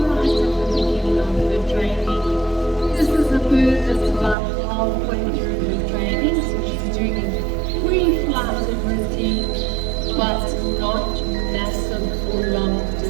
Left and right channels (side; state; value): left; drops out; at 4.4 s